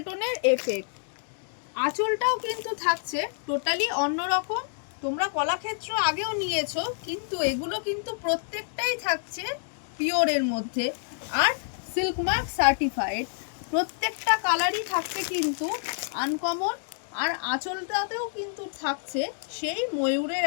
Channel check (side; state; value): right; silent; digital silence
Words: টোনের এফেক্ট। আঁচলটাও কিন্তু থাকছে টোটালি অন্যরকম। তোমরা কলাক্ষেত্র আগেও নিয়েছো, কিন্তু এগুলো কিন্তু প্রত্যেকটাই থাকছে পিওরের মধ্যে আর সিল্ক মার্ক সার্টিফাইড। প্রত্যেকটা কালারই থাকছে কিন্তু আনকমন, আর আঁচলটাতেও কিন্তু থাকছে সেই ময়ূরের